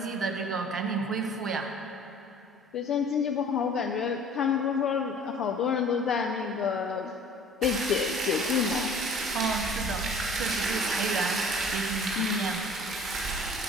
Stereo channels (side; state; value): both; normal; correlation 0.48